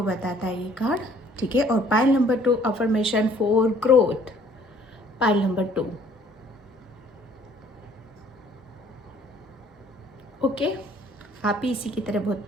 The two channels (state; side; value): normal; both; correlation 0.58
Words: बताता है ये कार्ड। ठीक है। और pile number 2 affirmation for growth, pile number 2। Okay, आप ही इसी की तरह